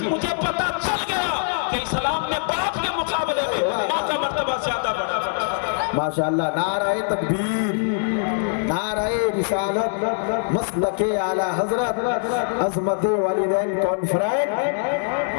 مجھے پتہ چل گیا کہ اسلام میں باپ کے مقابلے میں ماں کا مرتبہ زیادہ بڑا۔ ماشاءاللہ، نعرہ تکبیر، نعرہ رسالت، مسلک اعلیٰ حضرت، عظمت والدین کانفرنس،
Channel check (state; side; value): silent; right; digital silence